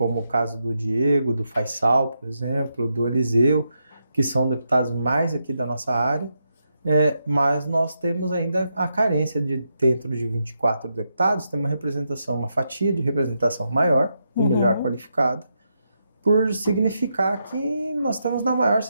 o caso do Diego, do Faisal, por exemplo, do Eliseu, que são deputados mais aqui da nossa área, mas nós temos ainda a carência de, dentro de 24 deputados, ter uma representação, uma fatia de representação maior e melhor qualificada, por significar que nós estamos na maior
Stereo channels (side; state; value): both; inverted; correlation -0.83